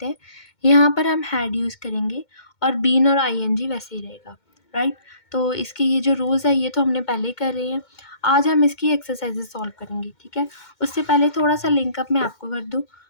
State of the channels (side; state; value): right; late; 2.2 ms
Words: हैं, यहाँ पर हम हैड यूज़ करेंगे और बीन और आईएनजी वैसे ही रहेगा, राइट? तो इसके ये जो रूल्स है ये तो हमने पहले ही कर रहे हैं. आज हम इसकी एक्सरसाइजेस सॉल्व करेंगे, ठीक है? उससे पहले थोड़ा सा लिंकअप मैं आपको कर दूँ,